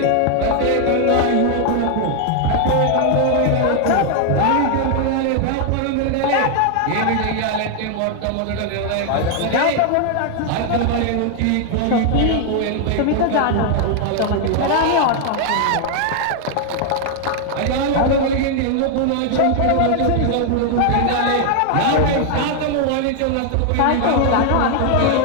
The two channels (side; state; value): both; different; correlation 0.00